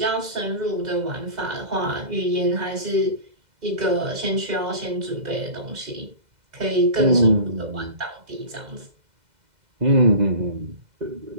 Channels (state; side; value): late; left; 2.0 ms